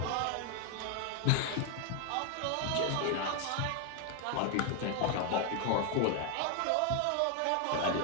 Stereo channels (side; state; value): both; different; correlation 0.01